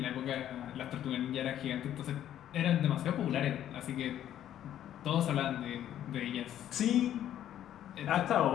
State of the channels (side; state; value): right; quieter; 11.3 dB